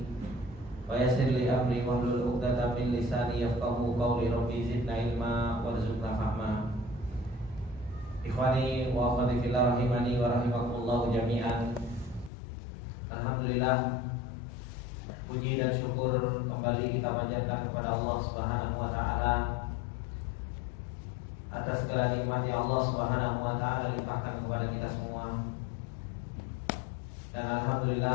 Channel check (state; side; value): drops out; right; at 12.3 s